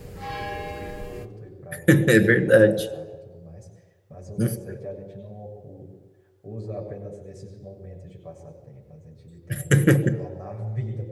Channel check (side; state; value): both; identical; correlation 1.00